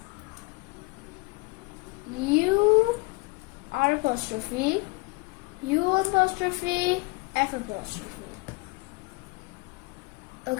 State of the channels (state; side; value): quieter; right; 25.2 dB